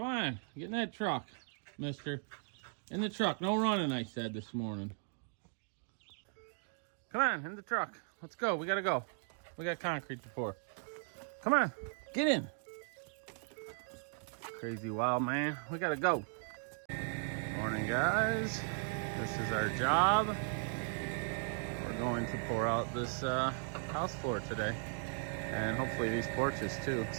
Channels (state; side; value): silent; left; 53 dB below the other